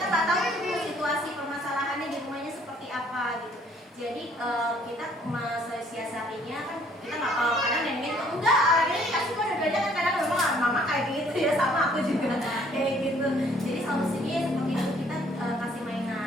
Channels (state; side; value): normal; both; correlation 0.61